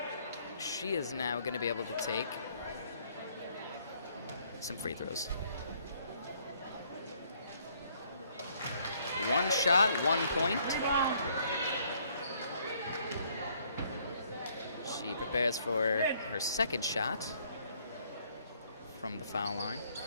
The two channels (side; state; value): both; inverted; correlation -0.65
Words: She is now going to be able to take some free throws. One shot, 1 point. She prepares for her second shot from the foul line.